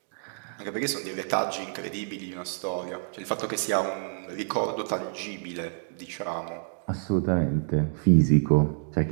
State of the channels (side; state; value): left; silent; digital silence